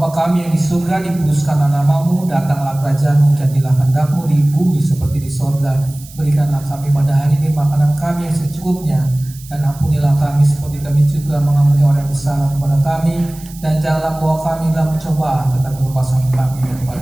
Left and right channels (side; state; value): right; noise; hiss, 20 dB below the sound